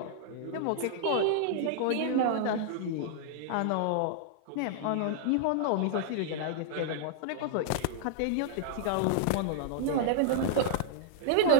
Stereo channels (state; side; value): different; both; correlation -0.01